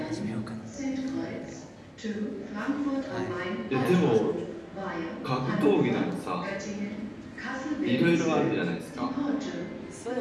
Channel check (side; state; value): both; identical; correlation 1.00